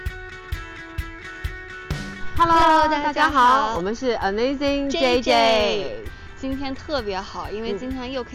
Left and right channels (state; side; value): identical; both; correlation 1.00